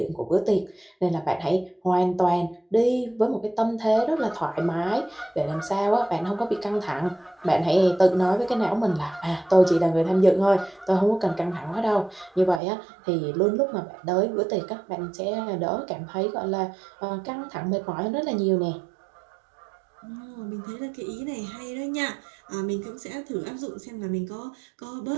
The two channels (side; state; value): left; drops out; at 12.6 s